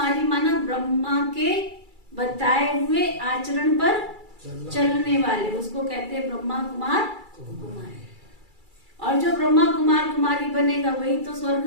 माना ब्रह्मा के बताए हुए आचरण पर चलने वाले, उसको कहते हैं ब्रह्मा कुमार कुमारी। और जो ब्रह्मा कुमार कुमारी बनेगा वही तो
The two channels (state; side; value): late; left; 2.3 ms